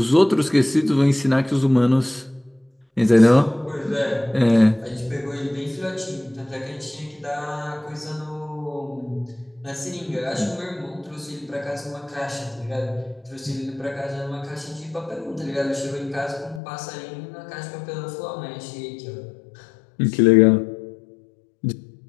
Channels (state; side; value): drops out; right; at 16.6 s